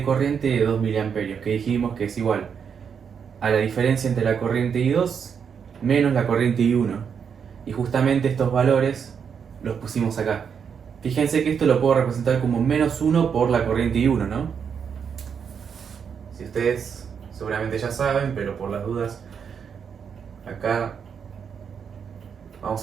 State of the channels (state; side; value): quieter; left; 7.0 dB